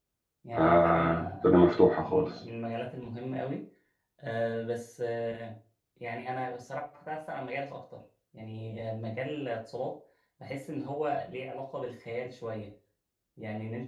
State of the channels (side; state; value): both; identical; correlation 1.00